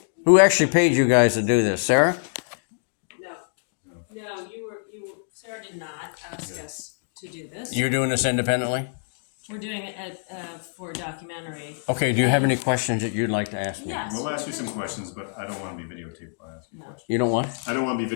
Who actually paid you guys to do this? Sarah? No, Sarah did not ask us to do this. You're doing this independently? We're doing it for a documentary. Okay, do you have any questions that you'd like to ask me? Yes. We'll ask you some questions, but I don't want to be videotaped while I ask you No. questions. You don't want? I don't want to be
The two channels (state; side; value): silent; right; digital silence